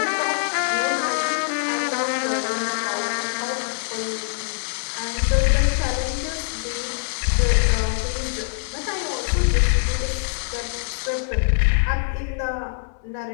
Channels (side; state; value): right; silent; digital silence